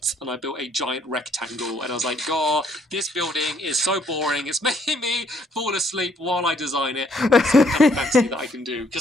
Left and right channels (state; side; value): normal; both; correlation 0.66